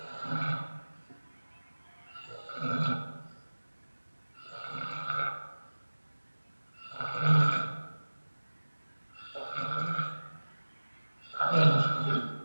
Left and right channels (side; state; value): both; inverted; correlation -1.00